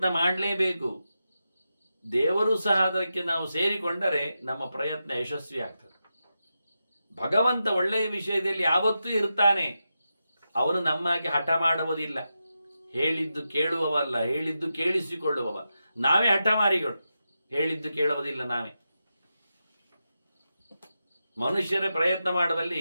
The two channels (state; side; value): inverted; both; correlation -0.89